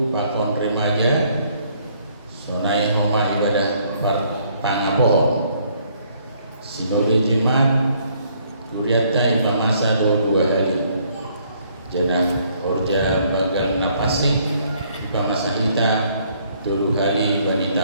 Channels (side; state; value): both; inverted; correlation -0.66